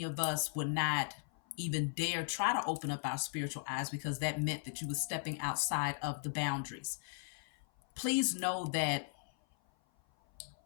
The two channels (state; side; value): silent; right; 53 dB below the other